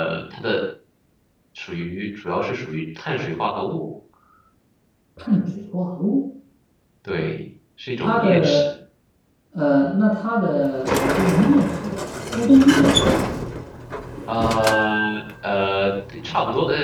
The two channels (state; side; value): identical; both; correlation 1.00